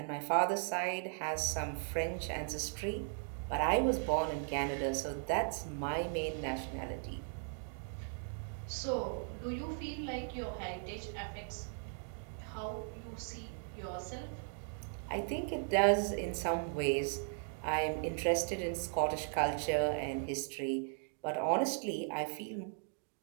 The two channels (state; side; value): silent; left; 53 dB below the other